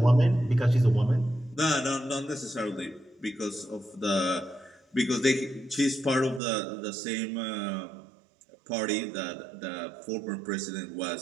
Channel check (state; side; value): drops out; left; at 6.4 s